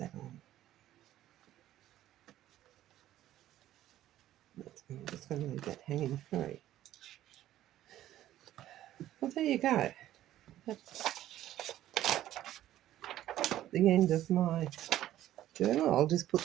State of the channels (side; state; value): left; quieter; 13.3 dB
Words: on. I'm just going to leave that hanging free. Well, there you go. That's the end of my journal. I'll just put